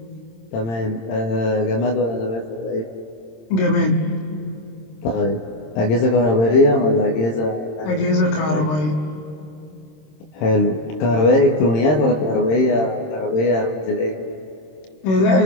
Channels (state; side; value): late; right; 26 ms